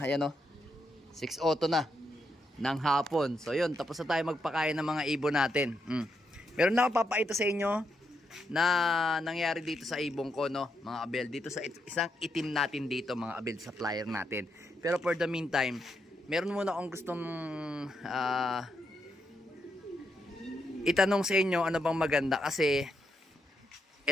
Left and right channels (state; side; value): normal; both; correlation 0.81